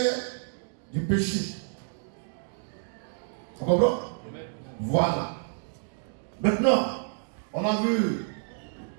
du péché. On comprend? Amen. Voilà. Maintenant, on a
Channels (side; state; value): left; silent; digital silence